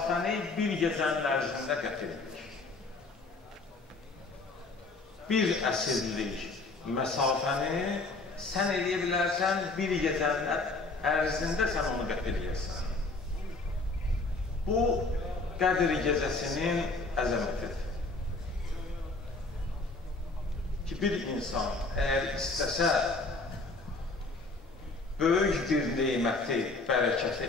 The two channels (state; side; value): quieter; right; 3.5 dB